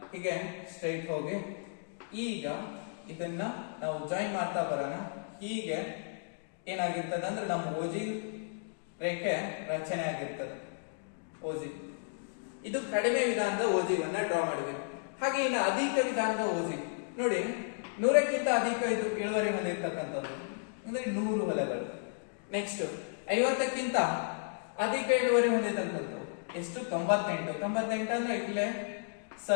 ಹೀಗೆ ಸ್ಟ್ರೈಟ್ ಹೋಗಿ ಈಗ ಇದನ್ನ ನಾವು ಜಾಯಿನ್ ಮಾಡ್ತಾ ಬರೋಣ. ಹೀಗೆ ಏನಾಗಿರ್ತದೆ ಅಂದ್ರೆ ನಮ್ಮ ಓಜಿ ರೇಖೆ ರಚನೆ ಆಗಿರ್ತದೆ. ಓಜಿ ಇದು ಕಡಿಮೆ ವಿಧಾನದ ಓಜಿವನ್ನ ಡ್ರಾ ಮಾಡಿದ್ವಿ. ಹಾಗೆ ಇನ್ನು ಅಧಿಕ ವಿಧಾನದ ಓಜಿ ನೋಡಿ, 100ಕ್ಕಿಂತ ಅಧಿಕ ಇದು ಇಳುವರಿ ಹೊಂದಿರ್ತಕ್ಕಂಥದ್ದು ಅಂದ್ರೆ 100 ಹೊಲಗಳು. ನೆಕ್ಸ್ಟ್ 50ಕ್ಕಿಂತ ಅಧಿಕ ಇಳುವರಿ ಹೊಂದಿರ್ತಕ್ಕಂಥದ್ದು ಎಷ್ಟು 98. 98 ಅಂದ್ರೆ ಇಲ್ಲೇ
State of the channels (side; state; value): right; silent; digital silence